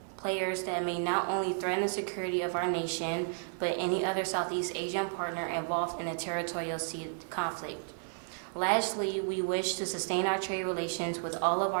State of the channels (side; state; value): left; silent; 56 dB below the other